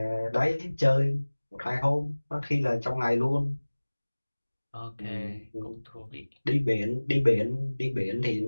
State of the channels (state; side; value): inverted; both; correlation -1.00